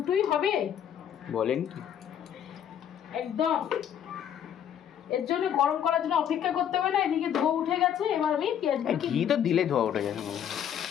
হবে। বলেন কি একদম। এর জন্য গরম করার জন্য অপেক্ষা করতে হবে না। এদিকে ধোয়া উঠে গেছে। এবার আমি ঘি তো দিলে ধোয়া উঠে যাবে।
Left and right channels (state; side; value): quieter; right; 9.3 dB